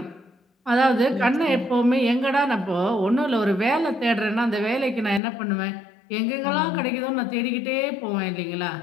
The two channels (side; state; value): right; drops out; at 5.2 s